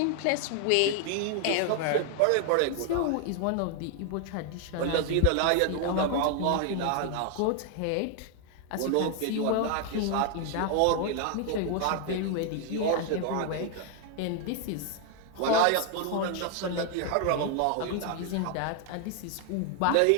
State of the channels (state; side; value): different; both; correlation 0.00